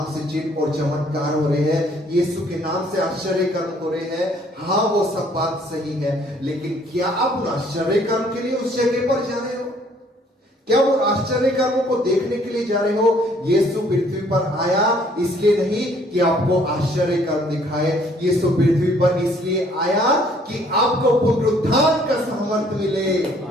से चिन्ह और चमत्कार हो रहे हैं, यीशु के नाम से आश्चर्य कर्म हो रहे हैं। हाँ, वो सब बात सही है, लेकिन क्या आप उन आश्चर्य कर्म के लिए उस जगह पर जा रहे हो? क्या वो आश्चर्य कर्मों को देखने के लिए जा रहे हो? यीशु पृथ्वी पर आया इसलिए नहीं कि आपको आश्चर्य कर्म दिखाए, यीशु पृथ्वी पर इसलिए आया कि आपको पुनरुत्थान का सामर्थ मिले।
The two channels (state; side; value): normal; both; correlation 0.61